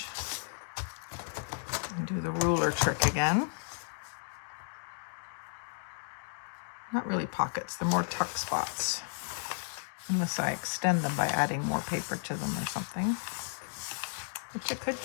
and do the ruler trick again. Not really pockets, they're more tuck spots, unless I extend them by adding more paper to them or something, which I could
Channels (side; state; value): right; silent; digital silence